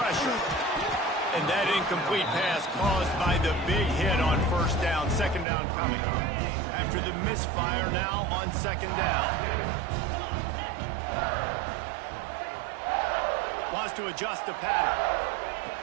And that incomplete pass caused by the big hit on first down. Second down coming. After the misfire now on second down. Wants to adjust the pattern.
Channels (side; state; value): left; drops out; at 5.5 s